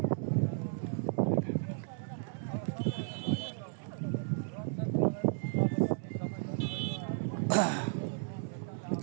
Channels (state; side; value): silent; left; digital silence